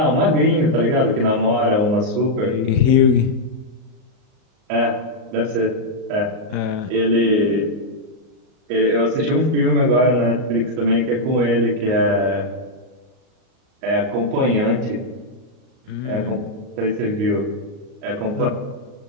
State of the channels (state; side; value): late; left; 38 ms